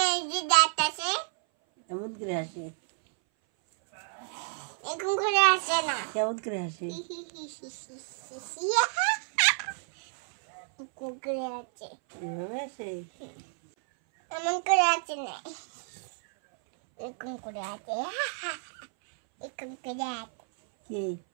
যে দাঁত আছে, কেমন করে হাসে? এরকম করে হাসে না। কেমন করে হাসে? এরকম করে আছে। এভাবে হাসে? এমন করে আছে না, এরকম করে আছে। এরকম করে আছে। কি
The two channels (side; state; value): left; silent; 58 dB below the other